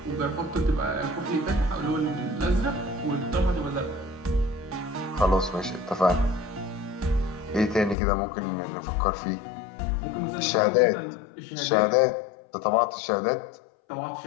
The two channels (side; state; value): right; drops out; at 8.0 s